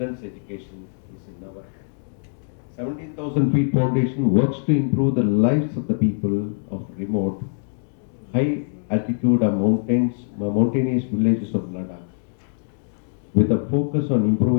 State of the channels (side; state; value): right; silent; digital silence